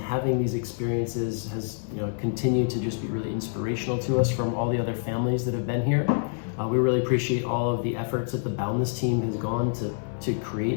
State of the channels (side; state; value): right; silent; 60 dB below the other